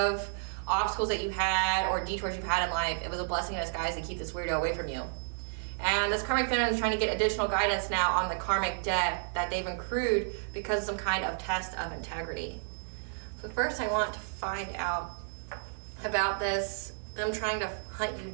obstacles that you had or detours you've had in life, it was a blessing in disguise to keep this weirdo away from you. And this karmic feminine is trying to get additional guidance now on the karmic debt that they've accrued because of some kind of test of integrity. So first I want to find out about this, them trying to hunt you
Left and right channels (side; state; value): left; silent; 57 dB below the other